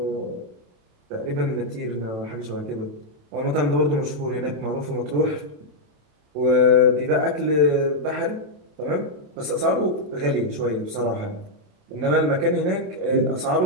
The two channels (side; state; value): left; late; 27 ms